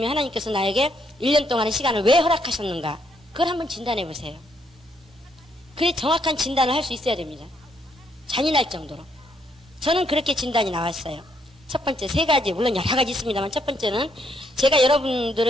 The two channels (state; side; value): normal; both; correlation 0.73